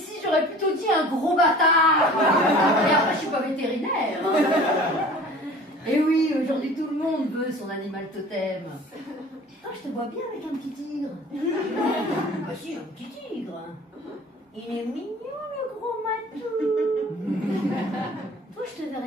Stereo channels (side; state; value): both; normal; correlation 0.45